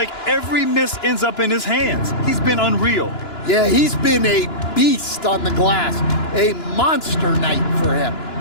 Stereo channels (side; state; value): right; late; 2.9 ms